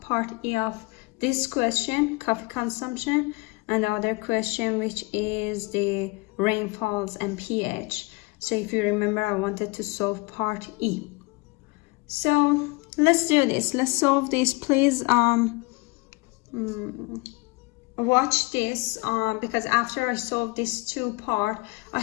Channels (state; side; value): quieter; right; 25.5 dB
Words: E of this question, coffee consumption, and the other question, which is the rainfalls and pH. So if you remember, I wanted to solve part E. So let's do this. Let's solve this. Please watch this because after I solve this two part, I